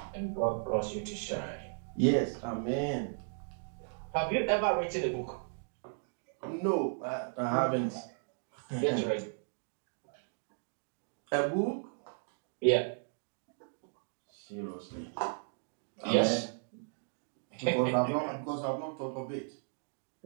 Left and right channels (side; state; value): left; silent; digital silence